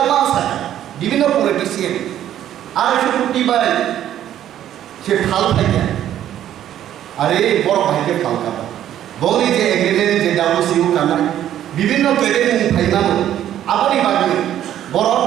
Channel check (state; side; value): quieter; left; 11.4 dB